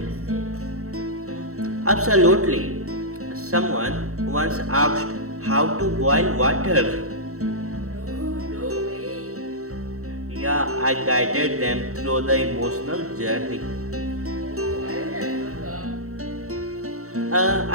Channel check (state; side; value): late; left; 0.64 ms